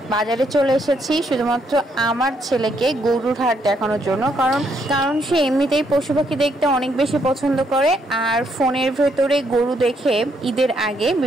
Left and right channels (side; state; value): both; normal; correlation 0.74